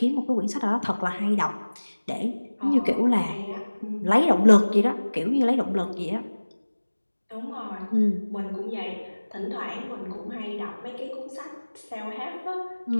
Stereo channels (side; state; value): both; inverted; correlation -1.00